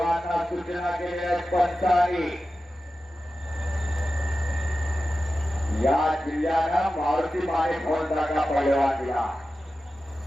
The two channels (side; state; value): both; normal; correlation 0.94